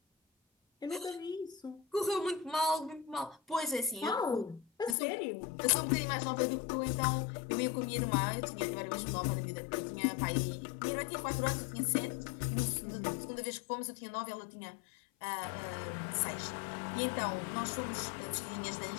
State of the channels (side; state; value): right; drops out; at 5.0 s